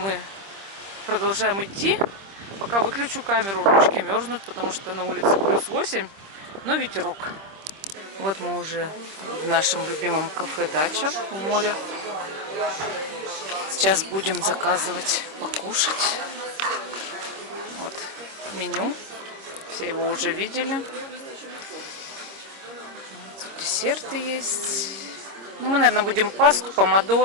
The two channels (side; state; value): left; late; 26 ms